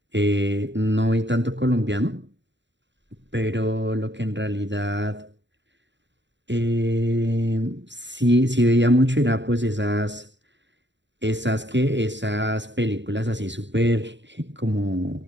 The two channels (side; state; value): left; late; 0.53 ms